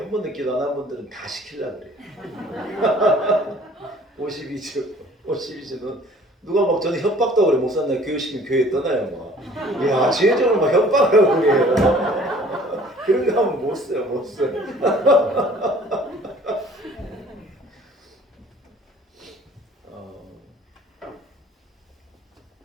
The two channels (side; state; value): both; normal; correlation 0.53